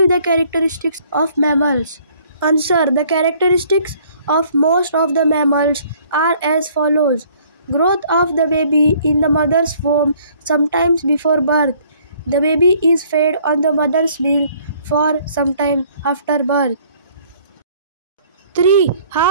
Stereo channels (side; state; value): both; inverted; correlation -0.59